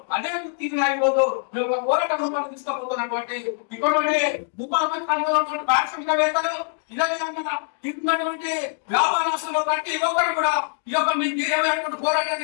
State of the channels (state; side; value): silent; right; digital silence